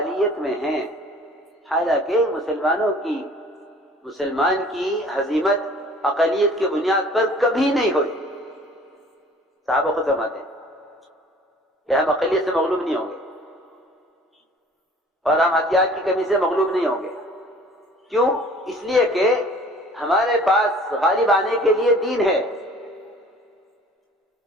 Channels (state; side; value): normal; both; correlation 0.50